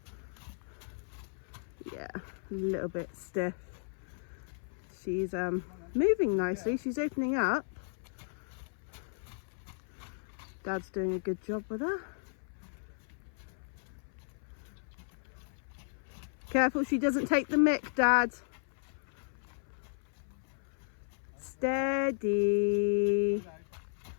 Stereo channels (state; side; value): silent; right; 54 dB below the other